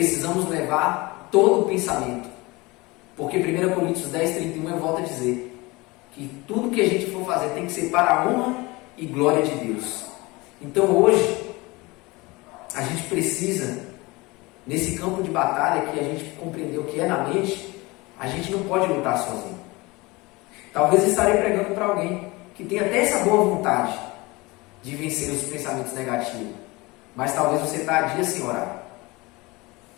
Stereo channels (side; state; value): right; quieter; 23.3 dB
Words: levar todo o pensamento. Porque 1 Coríntios 10:31 eu volto a dizer que tudo que a gente for fazer tem que ser para a honra e glória de Deus. Então hoje, a gente precisa, nesse campo de batalha que a gente compreendeu que é na mente, a gente não pode lutar sozinho. Talvez eu estarei pregando para alguém que tem até essa boa vontade de vencer os pensamentos negativos, mas talvez você está há dias sem orar.